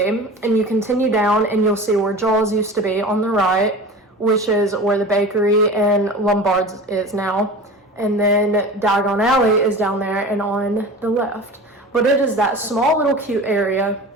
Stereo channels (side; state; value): both; normal; correlation 0.35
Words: And you continue down and you'll see where Jaws used to be on the right, which is where the bakery and Lombard's is now. And then Diagon Alley is down there and on the left. But it is that small little cute area